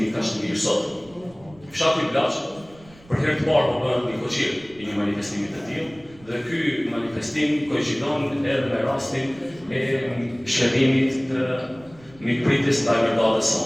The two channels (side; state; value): right; noise; rumble, 25 dB below the sound